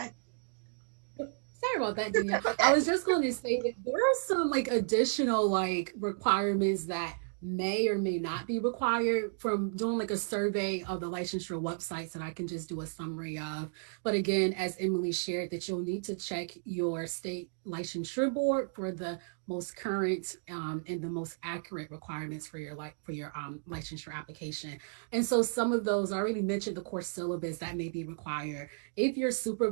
Sorry about that, Danielle. I was just going to say that there are some like additional like requirements that may or may not be required from doing like a survey of the licensure websites that I can just do a summary of. But again, as Emily shared, that you'll need to check your state licensure board for the most current and the most accurate requirements for your licensure application. And so some of those I already mentioned the course syllabus that may be required. If your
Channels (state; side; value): silent; left; digital silence